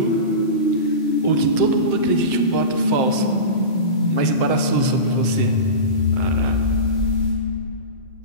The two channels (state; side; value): late; right; 7.7 ms